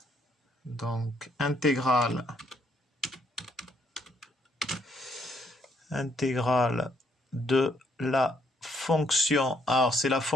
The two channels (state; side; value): normal; both; correlation 0.71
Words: donc intégrale de la fonction. Alors, c'est la